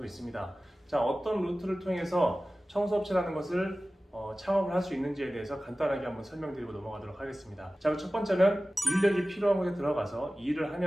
있습니다. 자, 어떤 루트를 통해서 청소업체라는 것을 창업을 할 수 있는지에 대해서 간단하게 한번 설명드리고 넘어가도록 하겠습니다. 자, 첫 번째는 인력이 필요한 곳에 들어가서 일을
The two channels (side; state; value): both; normal; correlation 0.96